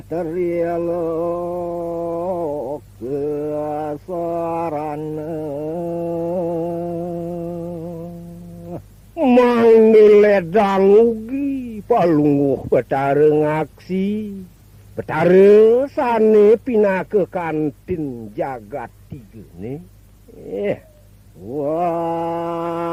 kesaran mangledang ugi palungguh Bathara ngaksi Bathara sane pinake kantin jagat tigene wah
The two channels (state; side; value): identical; both; correlation 1.00